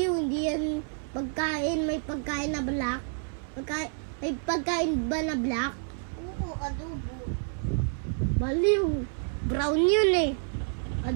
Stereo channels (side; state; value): left; silent; 59 dB below the other